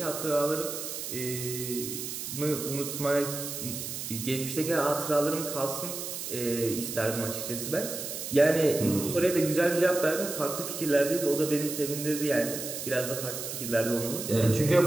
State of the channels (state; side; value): noise; right; hiss, 6 dB below the sound